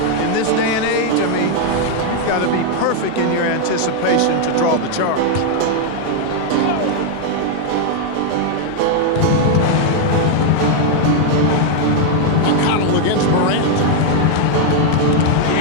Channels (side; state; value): both; different; correlation 0.00